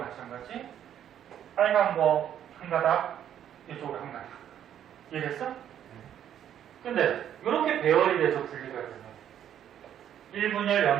빨간 거 한 가닥, 이쪽으로 한 가닥. 이해됐어? 근데 이렇게 배열이 돼서 분리가 되면 1분열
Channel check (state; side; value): quieter; left; 10.1 dB